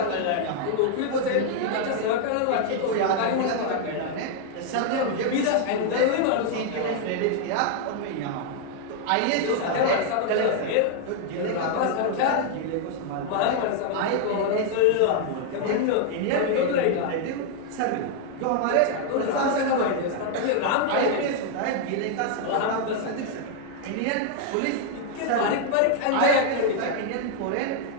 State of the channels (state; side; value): different; both; correlation 0.00